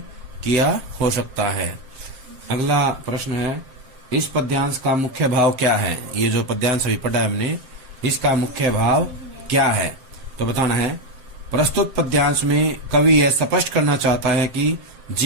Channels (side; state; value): left; late; 7.6 ms